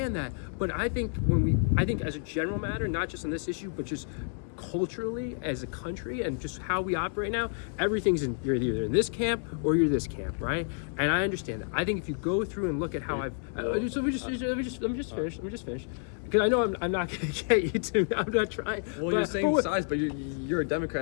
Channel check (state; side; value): silent; right; 58 dB below the other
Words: that. But I think as a general matter, not just on this issue, but just culturally as a country and just how we operate now, everything's you're either in this camp or you're this camp, right? And I understand that. I think if you go through and look at how let me just finish. Because I know I'm not going to get you to. I'm not trying. Well, you're saying size, but you're a